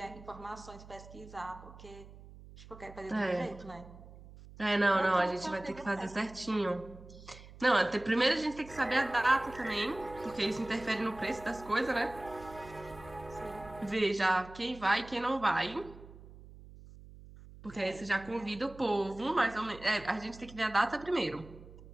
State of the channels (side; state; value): right; noise; hum, 18 dB below the sound